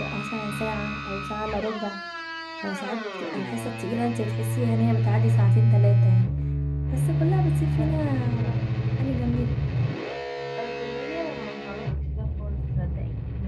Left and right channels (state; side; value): identical; both; correlation 1.00